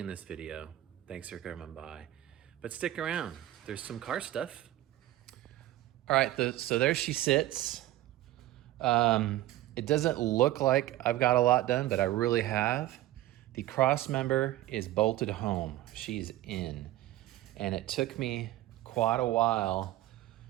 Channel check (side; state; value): left; quieter; 15.2 dB